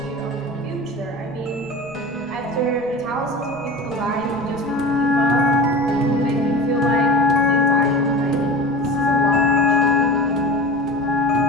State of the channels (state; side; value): noise; right; rumble, 25 dB below the sound